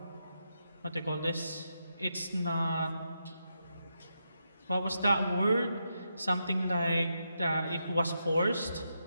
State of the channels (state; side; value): inverted; both; correlation -0.84